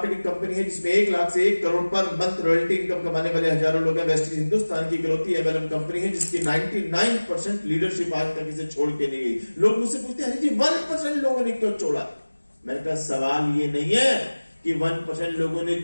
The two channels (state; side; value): inverted; both; correlation -1.00